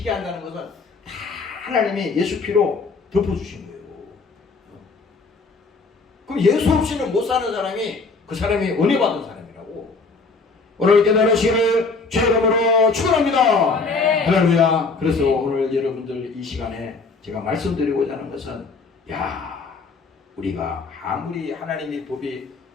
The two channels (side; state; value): right; quieter; 4.2 dB